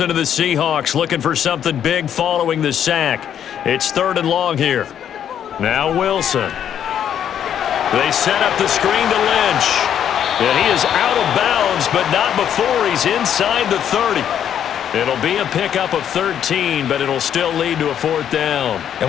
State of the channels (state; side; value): quieter; right; 9.4 dB